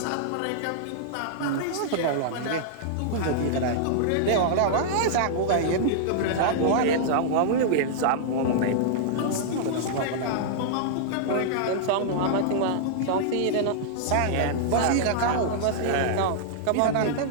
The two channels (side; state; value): both; different; correlation -0.01